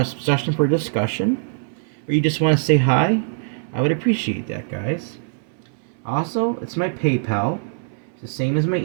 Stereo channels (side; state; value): left; silent; 64 dB below the other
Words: suggestion for a discussion? or you just want to say hi, I would appreciate that, guys. Also, it's my PayPal. It's the same as my